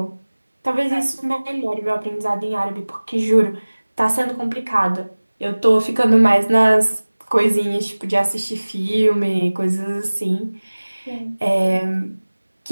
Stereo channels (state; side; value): inverted; both; correlation -1.00